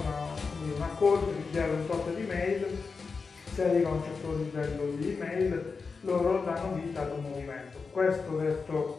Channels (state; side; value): quieter; right; 4.8 dB